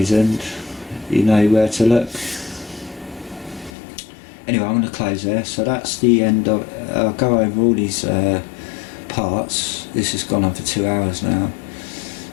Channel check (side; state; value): right; drops out; at 3.7 s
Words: you know where to look. Anyway, I'm going to close there. So that's the end of. I'll go over all these parts. This has gone on for 2 hours now,